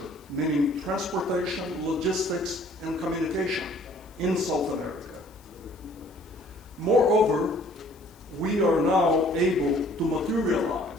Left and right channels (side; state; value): left; noise; hiss, 29 dB below the sound